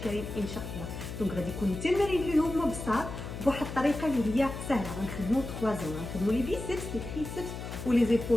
ان شاء الله. دونك غادي يكونوا التمارين اللي هما بساط بواحد الطريقه اللي هي سهله. غنخدموا 3 زون، غنخدموا لي بيسبس، لي تريسبس ولي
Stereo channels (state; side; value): noise; left; hum, 8 dB below the sound